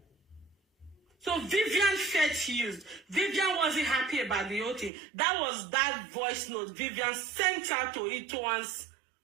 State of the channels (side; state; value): left; drops out; at 4.9 s